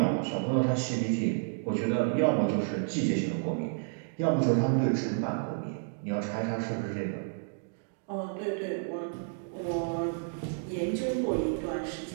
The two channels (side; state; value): left; silent; digital silence